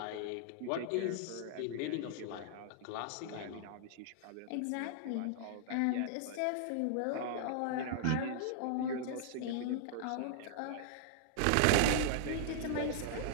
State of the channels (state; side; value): different; both; correlation -0.01